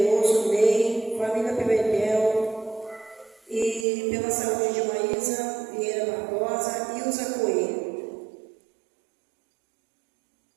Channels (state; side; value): drops out; left; at 3.9 s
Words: Ney, família Pimentel, e pela saúde de Maísa Vieira Barbosa e Ilza Coelho.